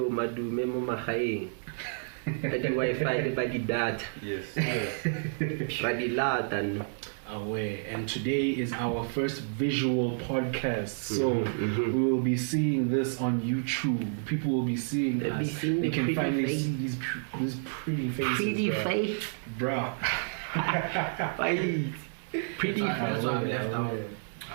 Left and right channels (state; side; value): silent; left; digital silence